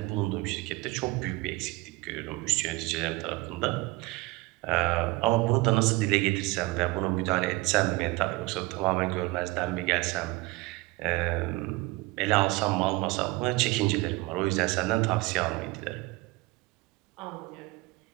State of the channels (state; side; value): quieter; left; 22.2 dB